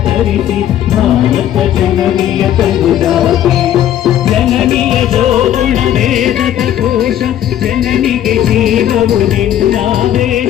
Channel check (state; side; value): quieter; right; 11.4 dB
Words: ತರಿಸಿ ಭಾರತ ಜನನಿಯ ಕರುದಾತೆ ಜನನಿಯ ಜೋಗುಣ ವೇದದ ಕೋಶ ಜನನಿಗೆ ಜೀವವು